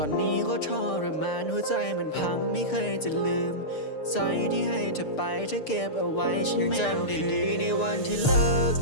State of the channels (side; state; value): right; late; 6.7 ms